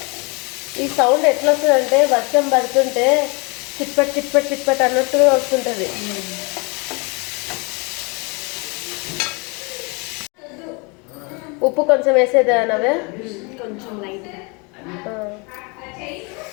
ఈ సౌండ్ ఎట్లా వస్తుందంటే వర్షం పడుతుంటే చిట్పట్ చిట్పట్ చిట్పట్ అన్నట్టుగా వస్తుంటుంది. ఉప్పు కొంచెం వేసేదా నవ్వే? కొంచెం లైట్.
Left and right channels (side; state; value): right; quieter; 30.6 dB